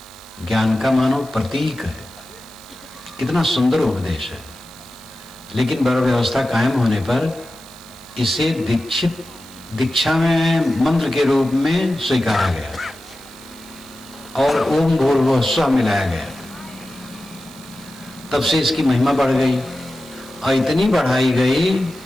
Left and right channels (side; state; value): right; noise; hiss, 24 dB below the sound